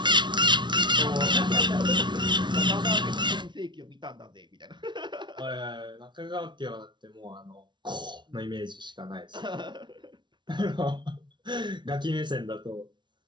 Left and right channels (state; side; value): late; left; 0.22 ms